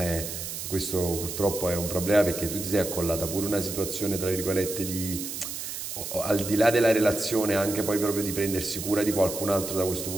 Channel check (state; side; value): noise; right; hiss, 6 dB below the sound